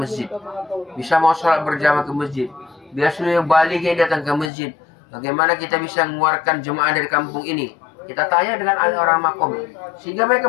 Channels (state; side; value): drops out; right; at 4.5 s